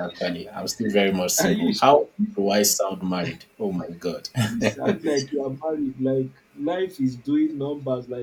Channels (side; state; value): both; identical; correlation 1.00